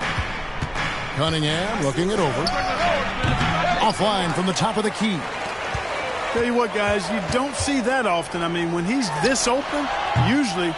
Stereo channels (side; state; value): both; identical; correlation 1.00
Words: Cunningham looking it over. Offline from the top of the key. Tell you what, guys, you don't see that often. I mean, when he's this open, usually